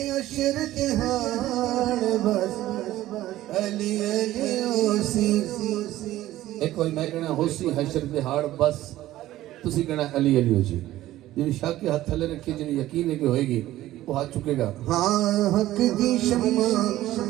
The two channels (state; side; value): quieter; left; 15.0 dB